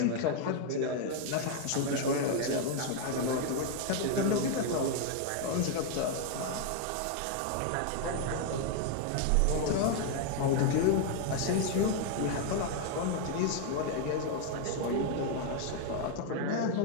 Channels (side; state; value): both; different; correlation 0.00